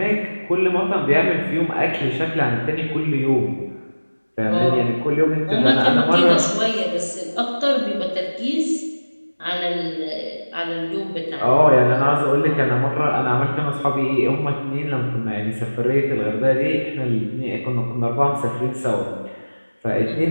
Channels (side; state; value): both; inverted; correlation -1.00